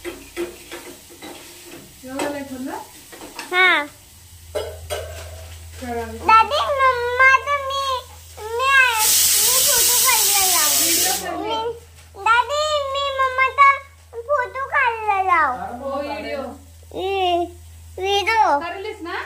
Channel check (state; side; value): identical; both; correlation 1.00